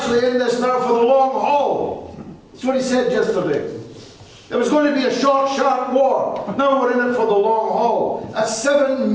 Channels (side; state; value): both; identical; correlation 1.00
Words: in this now for the long haul. That's what he said yesterday. It was going to be a short, sharp war. Now we're in it for the long haul. That's £7